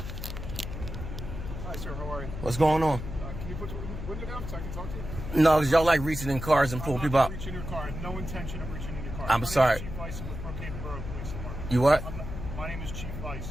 Hi, sir. How are you? What's going on? Can you put the window down so I can talk to you? No, because y'all like reaching in cars and pulling people out. I'm not reaching your car. I had no intention of reaching in your car. I'm sorry. Chief Vice with Brookhaven Borough Police Department. You what? My name is Chief Vice.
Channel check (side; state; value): left; noise; hum, 7 dB below the sound